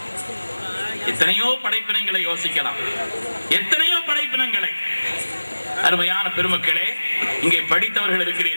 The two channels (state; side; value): inverted; both; correlation -1.00